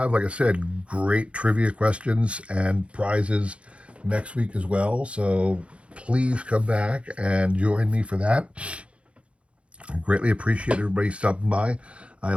like I said, great trivia questions and prizes next week as well. So please come back and join me for that. I greatly appreciate everybody stopping by. I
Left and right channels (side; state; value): left; late; 0.060 ms